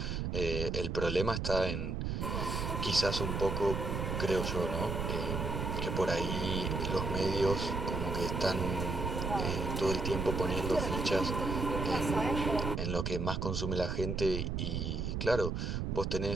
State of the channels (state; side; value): noise; right; rumble, 1 dB below the sound